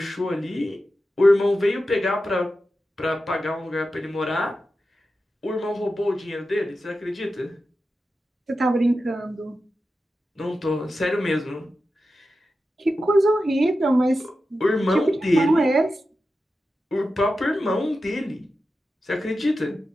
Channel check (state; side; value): normal; both; correlation 0.91